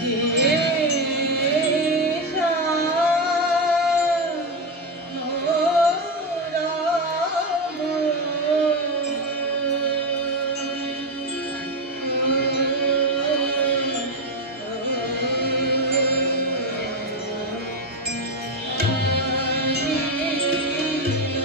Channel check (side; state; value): both; normal; correlation 0.12